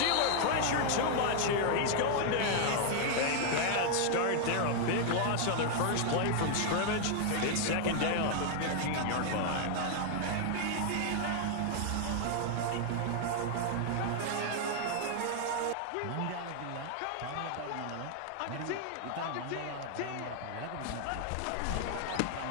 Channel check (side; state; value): both; different; correlation 0.00